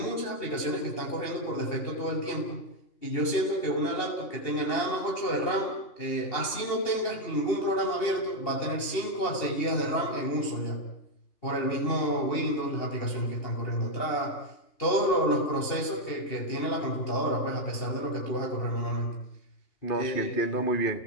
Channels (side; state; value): right; late; 2.8 ms